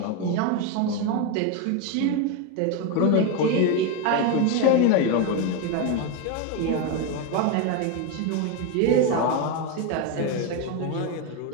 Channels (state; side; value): different; both; correlation 0.02